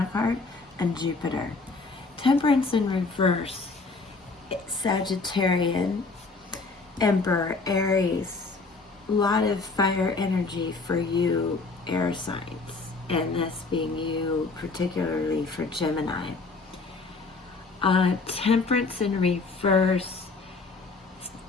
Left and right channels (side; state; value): right; quieter; 3.9 dB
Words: card, and Jupiter. Temperance in reverse, Sagittarian, Emperor, Aries, a lot of fire energy for you air signs, and this being you particularly for Gemini. Temperance in reverse